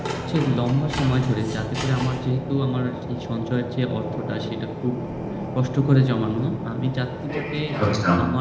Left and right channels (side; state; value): both; identical; correlation 1.00